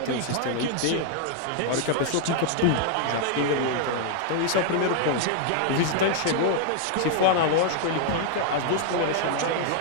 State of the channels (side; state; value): both; different; correlation 0.00